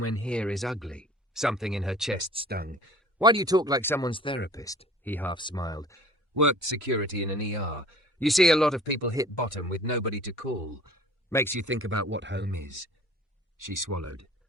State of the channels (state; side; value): normal; both; correlation 0.47